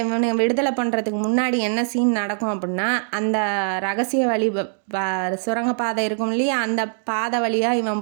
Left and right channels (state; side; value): silent; left; digital silence